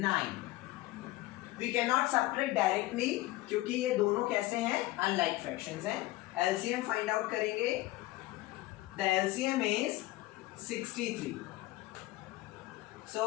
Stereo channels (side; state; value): right; quieter; 18.3 dB